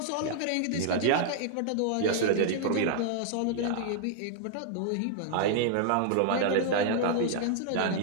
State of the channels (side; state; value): both; different; correlation -0.01